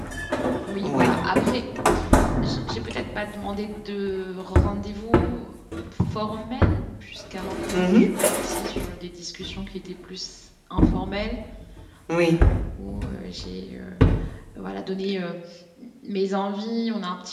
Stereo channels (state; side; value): identical; both; correlation 1.00